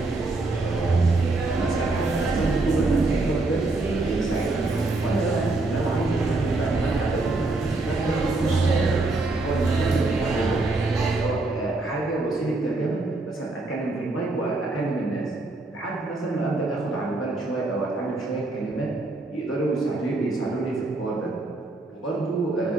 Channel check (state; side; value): quieter; left; 3.1 dB